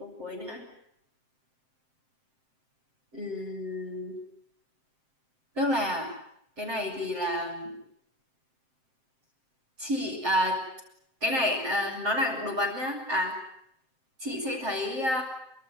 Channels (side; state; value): left; late; 7.6 ms